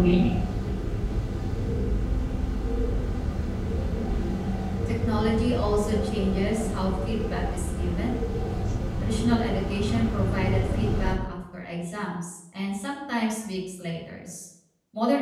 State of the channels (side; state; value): both; identical; correlation 1.00